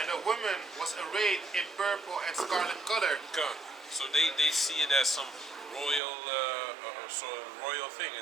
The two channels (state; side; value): drops out; left; at 6.0 s